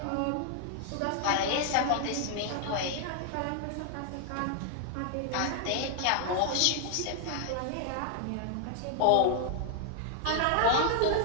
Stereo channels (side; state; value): both; different; correlation 0.00